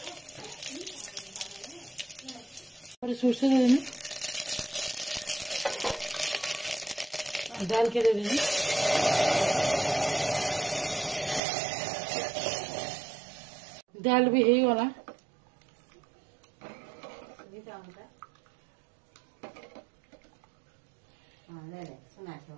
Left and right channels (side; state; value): left; drops out; at 11.4 s